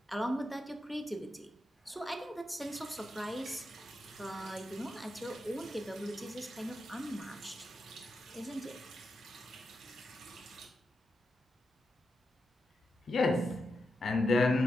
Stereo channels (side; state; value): both; normal; correlation 0.87